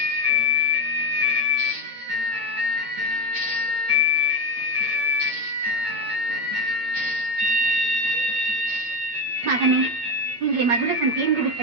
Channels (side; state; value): left; late; 8.7 ms